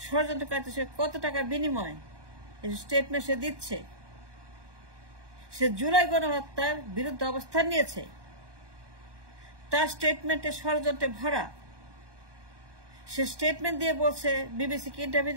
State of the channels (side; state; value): left; late; 1.2 ms